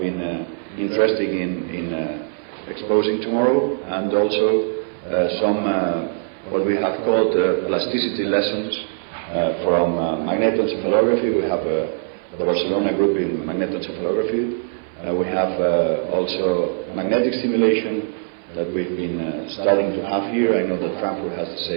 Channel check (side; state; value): left; silent; 63 dB below the other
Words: interested in exposing tomorrow, and also some what we have called plasticity lessons from magnetoencephalography. We have the Barcelona group in magnetoencephalography. We have also magnetic stimulation that we've been starting to have here. I know that Frankfurt has